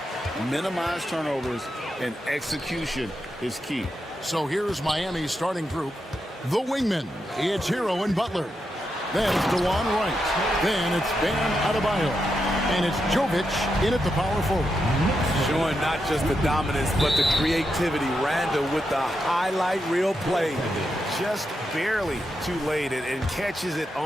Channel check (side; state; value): both; normal; correlation 0.85